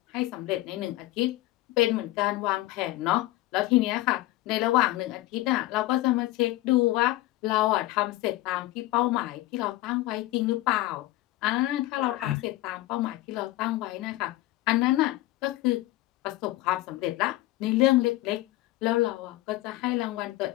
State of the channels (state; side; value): quieter; right; 17.4 dB